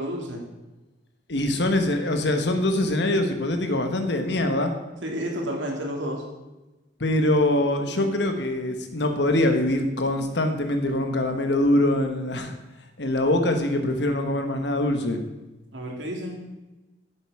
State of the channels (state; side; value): normal; both; correlation 0.43